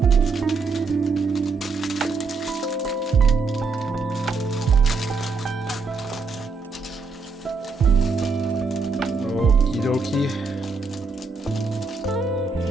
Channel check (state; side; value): quieter; left; 4.3 dB